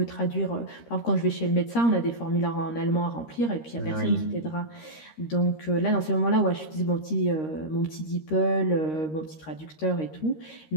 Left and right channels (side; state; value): right; late; 13 ms